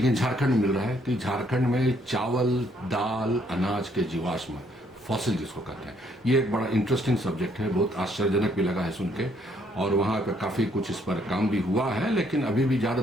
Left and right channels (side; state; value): both; normal; correlation 0.68